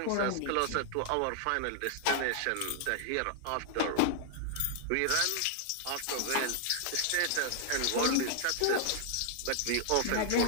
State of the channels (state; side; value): different; both; correlation 0.00